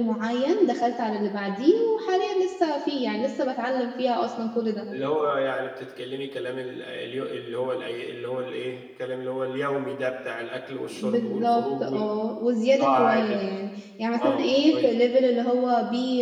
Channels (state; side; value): identical; both; correlation 1.00